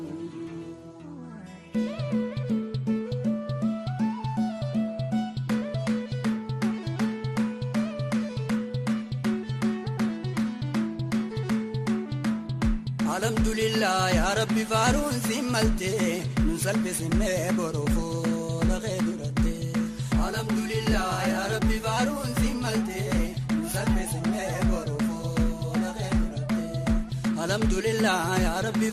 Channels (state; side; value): identical; both; correlation 1.00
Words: الحمد لله يا ربي فارون سملتي نسلب سمي بروفو لغيرتي. الحمد لله يا ربي فارون سملتي نسلب سمي بروفو لغيرتي. الحمد لله يا ربي